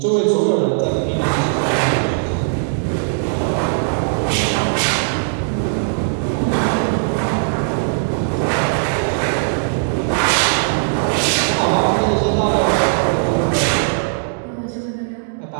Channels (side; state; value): left; silent; digital silence